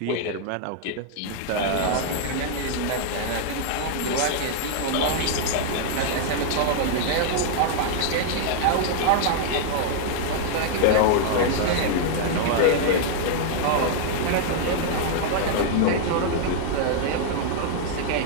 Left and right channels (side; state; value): both; different; correlation 0.00